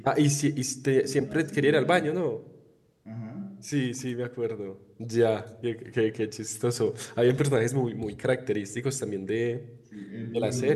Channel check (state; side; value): identical; both; correlation 1.00